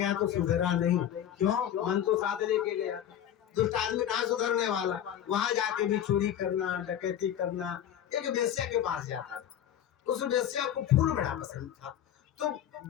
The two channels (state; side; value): quieter; right; 10.4 dB